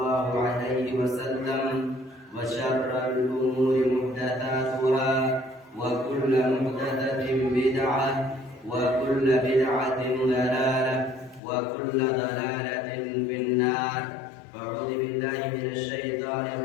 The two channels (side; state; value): right; drops out; at 11.4 s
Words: عليه وسلم وشر الأمور محدثاتها وكل محدثة بدعة وكل بدعة ضلالة وكل ضلالة في النار. فأعوذ بالله من الشيطان